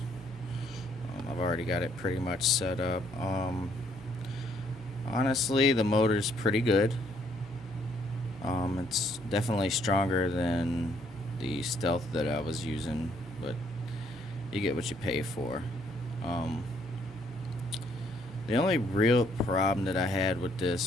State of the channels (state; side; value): normal; both; correlation 0.68